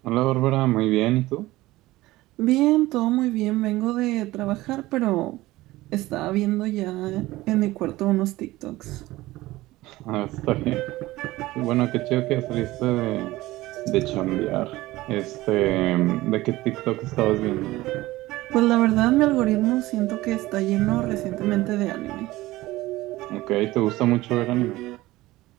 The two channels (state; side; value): quieter; left; 18.1 dB